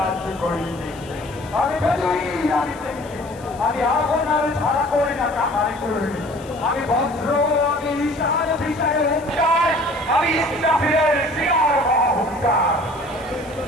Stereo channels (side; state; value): left; noise; hiss, 24 dB below the sound